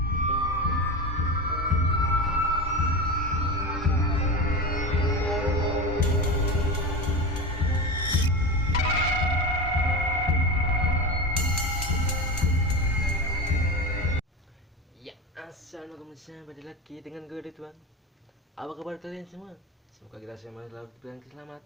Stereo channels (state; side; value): normal; both; correlation 0.24